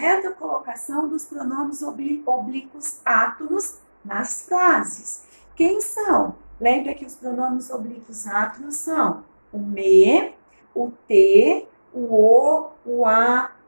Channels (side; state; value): both; inverted; correlation -1.00